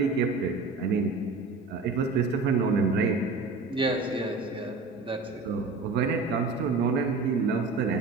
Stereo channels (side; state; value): left; quieter; 3.9 dB